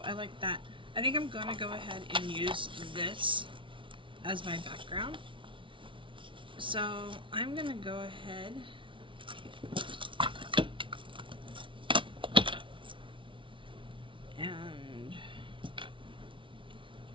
I like that. I think I'm gonna go ahead and use this as my background. So I'm gonna go ahead and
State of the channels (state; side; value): late; left; 0.25 ms